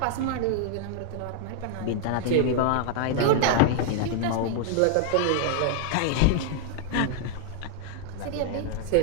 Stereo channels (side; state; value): both; different; correlation 0.00